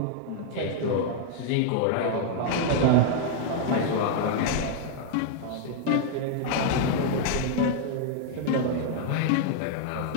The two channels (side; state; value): both; different; correlation 0.00